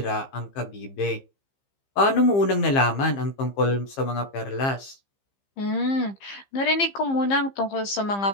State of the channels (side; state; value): right; late; 15 ms